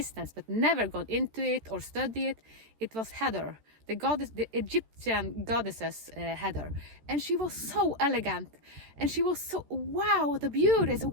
but never gone into it or studied it. It was Hathor, the Egyptian goddesses, Hathor, and she was so elegant, and she was so, wow, the beauty. So,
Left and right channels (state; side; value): late; left; 13 ms